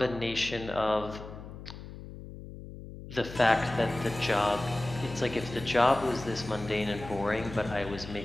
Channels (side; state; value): left; noise; hum, 13 dB below the sound